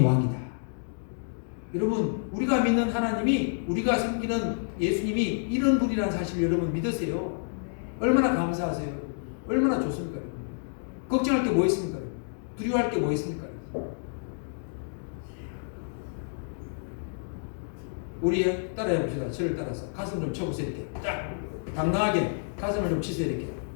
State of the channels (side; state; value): right; silent; digital silence